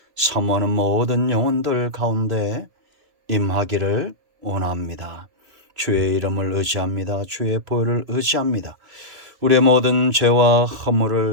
사모하는 모든 영혼들 가운데 임하기를 원합니다. 주의 이름을 의지합니다. 주의 보혈을 의지합니다. 우리의 모든 죄와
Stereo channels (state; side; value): late; left; 2.6 ms